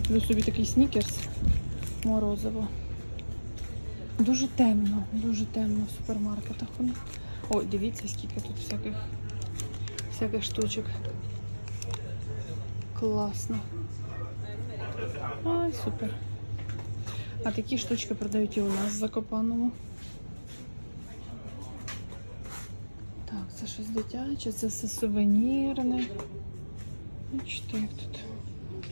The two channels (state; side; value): inverted; both; correlation -1.00